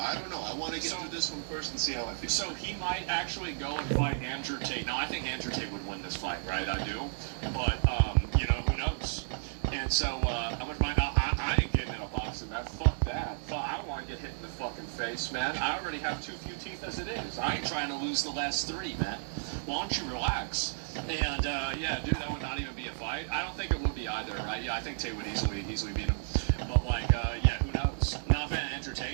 don't know. I want to get through this one first and see how I feel. So he might actually go and fight Andrew Tate. Now I think Andrew Tate would win this fight, right? I do, but you know, who knows? And so how much money? I ain't getting in a boxing match. Fuck that. I don't want to get hit in the fucking face, man. I already have too few teeth as it is. I ain't trying to lose the last 3, man. Why don't you relax? And yeah, dude, that would not even be a fight. I don't think it would be either, right? Yeah, I think Tate would easily beat him. But like, yeah, who knows? Not a fan of Andrew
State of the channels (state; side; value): silent; left; digital silence